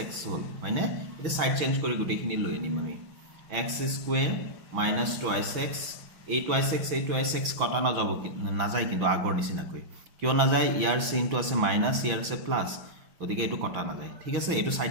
হ'ল হয়নে। এতিয়া সাইড চেঞ্জ কৰি গোটেইখিনি লৈ আনিম আমি, x² - 2x এই 2x কটা নাযায় কিন্তু আগৰ নিচিনাকৈ। কিয় নাযায়, ইয়াৰ চিনটো আছে মাইনাছ, ইয়াৰ আছে প্লাস, গতিকে এইটো কটা নাযায়। ঠিক আছে, এইটো সাইড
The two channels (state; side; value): late; left; 6.0 ms